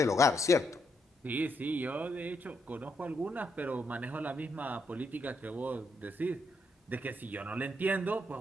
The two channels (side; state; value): both; normal; correlation 0.77